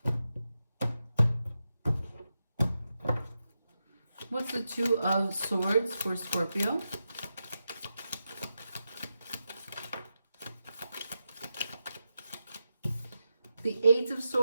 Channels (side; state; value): both; inverted; correlation -0.89